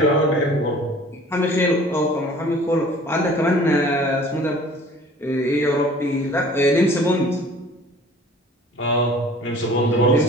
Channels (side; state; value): both; normal; correlation 0.49